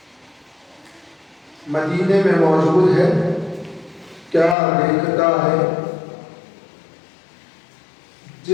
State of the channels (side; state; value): right; drops out; at 4.5 s